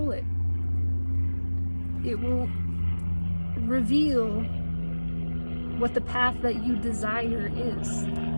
it. It will reveal what the path that you desire is.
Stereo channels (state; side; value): inverted; both; correlation -1.00